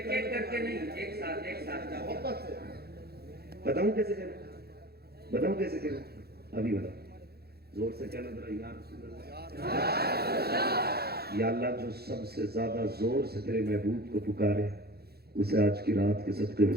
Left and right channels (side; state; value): left; late; 0.46 ms